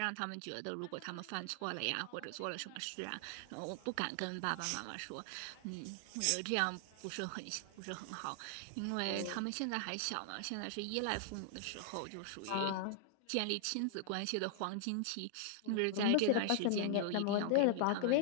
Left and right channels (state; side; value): different; both; correlation -0.01